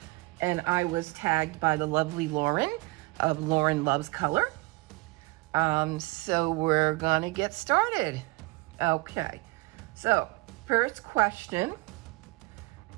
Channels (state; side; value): quieter; left; 24.2 dB